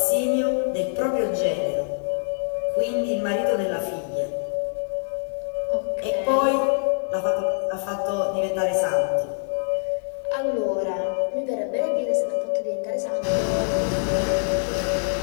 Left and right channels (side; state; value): right; silent; digital silence